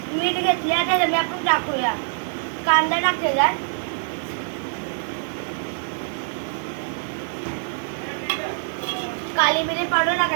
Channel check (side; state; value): left; silent; digital silence